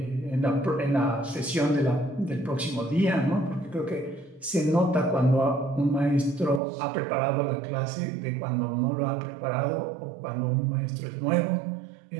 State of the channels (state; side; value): drops out; left; at 6.6 s